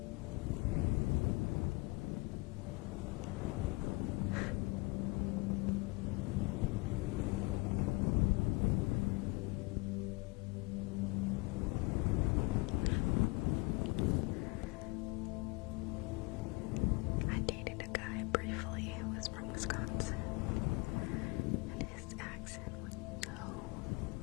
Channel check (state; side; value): quieter; right; 26.2 dB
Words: I dated a guy briefly who was from Wisconsin, and his accent was so